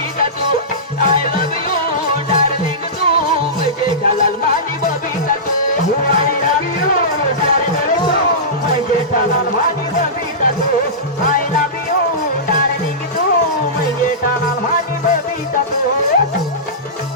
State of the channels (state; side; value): normal; both; correlation -0.19